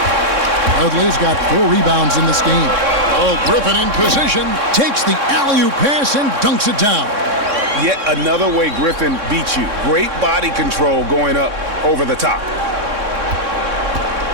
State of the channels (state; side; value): late; left; 3.6 ms